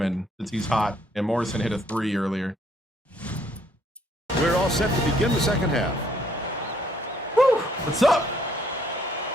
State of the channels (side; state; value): both; normal; correlation 0.66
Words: since he's hot, and Morrison hit a 3 earlier. We're all set to begin the second half. Woo! What's up?